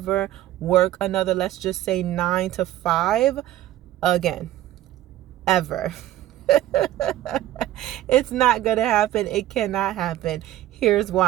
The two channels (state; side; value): quieter; left; 14.0 dB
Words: work another, let's just say 9 to 5 again, ever. It's not gonna happen. It cannot happen. Here's